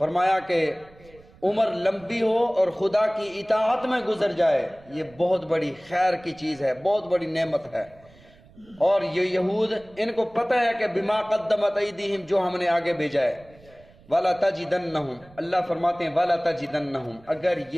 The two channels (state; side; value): noise; right; rumble, 26 dB below the sound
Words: کہ عمر لمبی ہو اور خدا کی اطاعت میں گزر جائے یہ بہت بڑی خیر کی چیز ہے، بہت بڑی نعمت ہے۔ اور یہ یہود ان کو پتہ ہے کہ بما قدمت ایدیہم، جو ہم نے آگے بھیجا ہے، وَلَا تَجِدَنَّهُمْ، اللہ فرماتے ہیں وَلَا تَجِدَنَّهُمْ، اگر